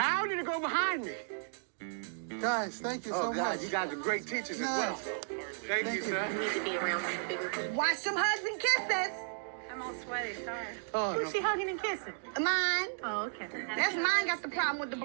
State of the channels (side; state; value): left; silent; digital silence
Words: did it go behind me? Guys, thank you so much. You guys are great teachers as well. Thank you, sir. You need to be around bigger people. Watch some hugs and kisses. I'm all sweaty, sorry. Oh, Who's she hugging and kissing? Mine. Oh, okay. That's mine got the problem with the